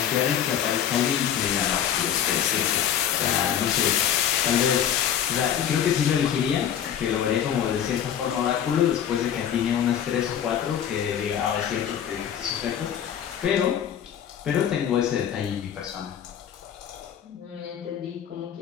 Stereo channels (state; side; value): quieter; right; 9.5 dB